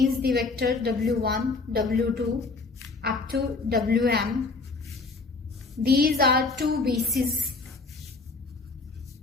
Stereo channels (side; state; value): right; quieter; 3.9 dB